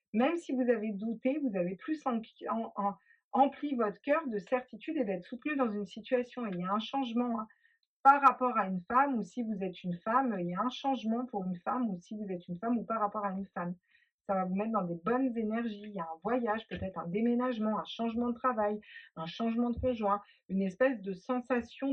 même si vous avez douté, vous avez plus empli votre cœur de certitude et d'être soutenu dans une situation. Et il y a un changement, hein, par rapport à une femme, ou si vous êtes une femme, il y a un changement pour une femme, ou si vous êtes une femme, ou par rapport à une femme. ça va vous mettre dans des bonnes énergies. Il y a un voyage, peut-être un déménagement, un changement de travail, un changement de conjoint, une espèce de sensation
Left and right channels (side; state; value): both; identical; correlation 1.00